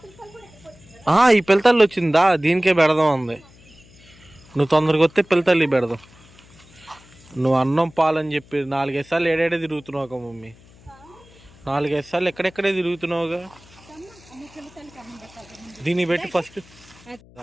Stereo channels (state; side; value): noise; left; hum, 25 dB below the sound